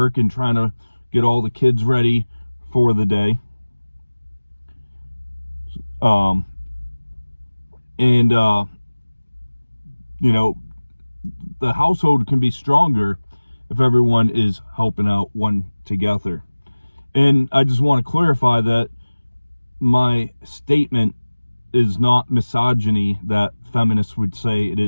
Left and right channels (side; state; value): both; inverted; correlation -1.00